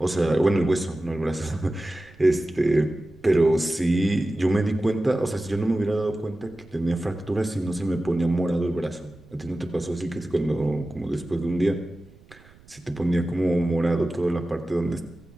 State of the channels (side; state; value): right; noise; rumble, 26 dB below the sound